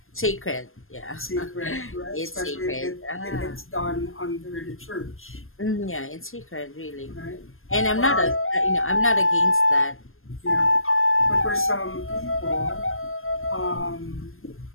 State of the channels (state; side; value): late; right; 0.60 ms